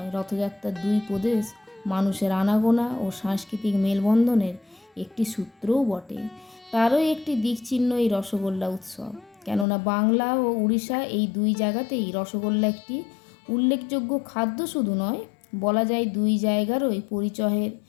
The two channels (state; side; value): drops out; right; at 9.7 s